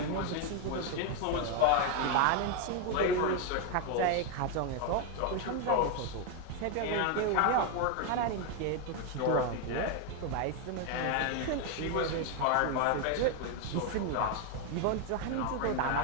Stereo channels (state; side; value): different; both; correlation 0.02